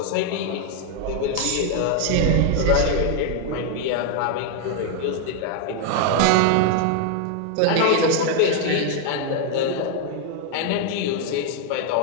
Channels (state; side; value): different; both; correlation 0.00